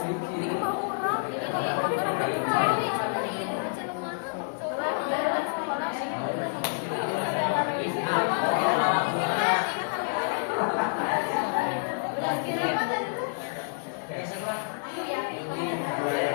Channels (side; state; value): right; silent; digital silence